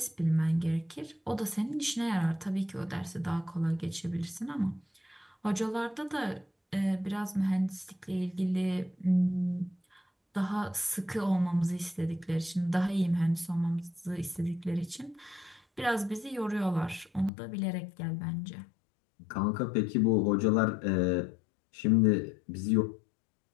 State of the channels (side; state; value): right; drops out; at 17.3 s